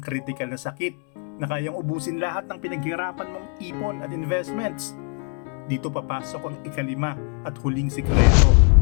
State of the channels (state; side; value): quieter; right; 36.1 dB